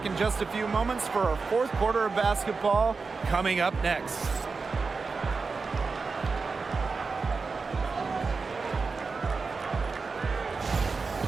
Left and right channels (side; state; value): left; quieter; 4.5 dB